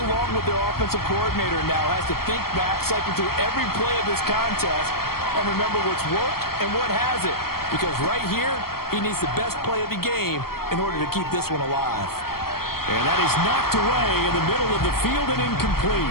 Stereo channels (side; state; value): right; late; 0.94 ms